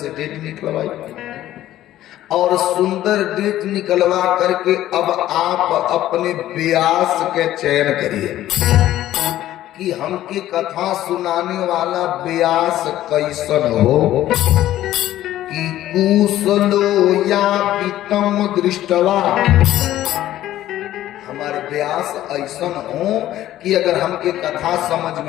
डेट निकलवाई और सुंदर डेट निकलवा करके अब आप अपने व्यास के चयन करिए कि हमके कथा सुनाने वाला व्यास कैसन हो कि कुशलो या पितम दृष्टवा। हमारे व्यास ऐसन हो कि अगर हमके कथा समझ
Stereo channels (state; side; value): quieter; right; 13.6 dB